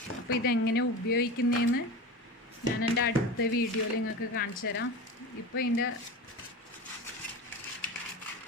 അപ്പോൾ ഇതെങ്ങനെ ഉപയോഗിക്കുന്നതെന്ന് ഞാൻ എൻ്റെ അടുത്ത വീഡിയോയിൽ നിങ്ങൾക്ക് കാണിച്ചു തരാം. ഇപ്പോൾ ഇതിൻ്റെ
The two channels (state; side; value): normal; both; correlation 0.28